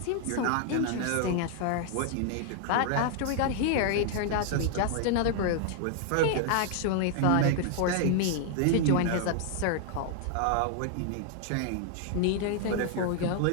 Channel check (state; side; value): different; both; correlation 0.00